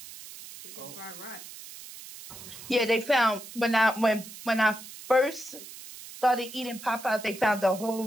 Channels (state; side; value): noise; right; hiss, 15 dB below the sound